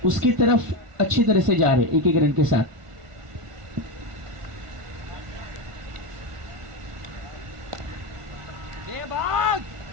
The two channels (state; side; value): late; left; 1.5 ms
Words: उसकी तरफ अच्छी तरह से जा रहे 1 रन के साथ.